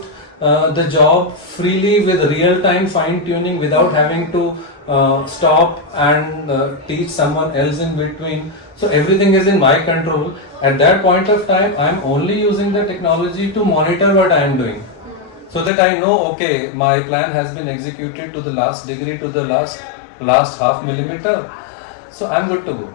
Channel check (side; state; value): right; drops out; at 15.7 s